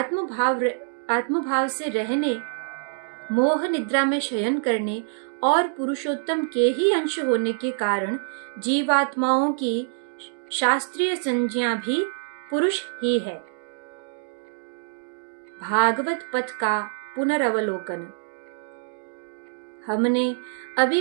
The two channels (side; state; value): left; silent; digital silence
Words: से रहने, मोह निद्रा में शयन करने और पुरुषोत्तम के ही अंश होने के कारण जीवात्माओं की शास्त्रीय संज्ञा भी पुरुष ही है। भागवत पथ का पुनरवलोकन। हमने